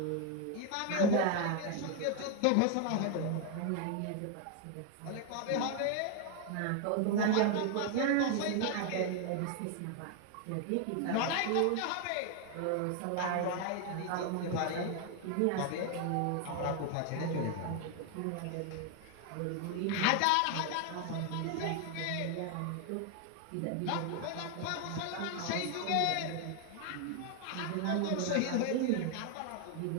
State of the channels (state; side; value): different; both; correlation 0.01